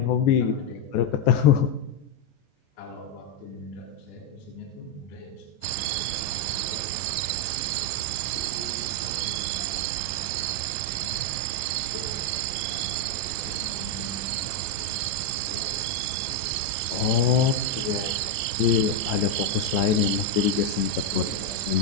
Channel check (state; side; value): late; right; 13 ms